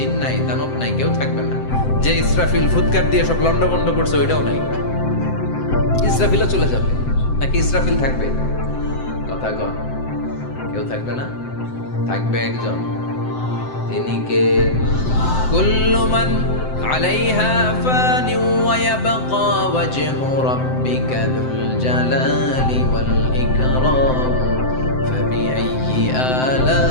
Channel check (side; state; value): right; late; 7.8 ms